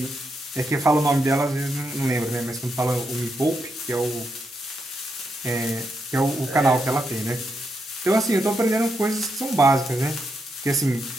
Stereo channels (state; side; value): normal; both; correlation 0.82